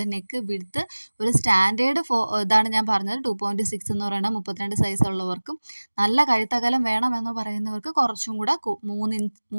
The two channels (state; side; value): inverted; both; correlation -1.00